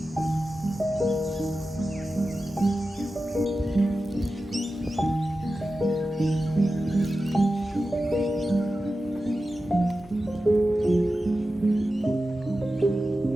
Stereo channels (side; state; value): both; normal; correlation 0.93